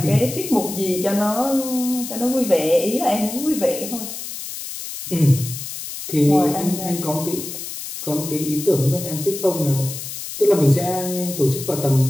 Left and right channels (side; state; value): left; noise; hiss, 8 dB below the sound